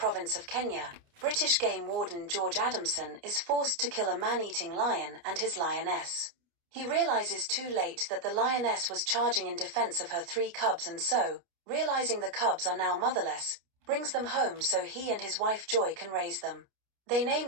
of Kenya, British game warden George Adamson is forced to kill a man-eating lion and his lioness. He realizes too late that the lioness was charging in defense of her 3 cubs, and so, realizing the cubs are now motherless, brings them home so he and his wife Joy can raise them. They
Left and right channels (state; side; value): late; left; 29 ms